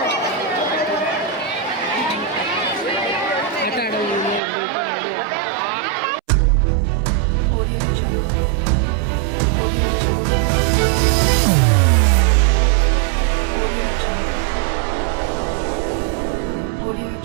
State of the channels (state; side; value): drops out; left; at 4.4 s